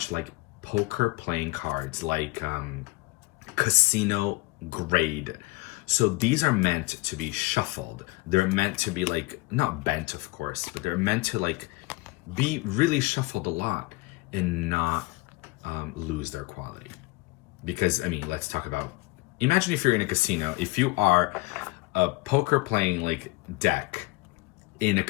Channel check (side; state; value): right; quieter; 22.6 dB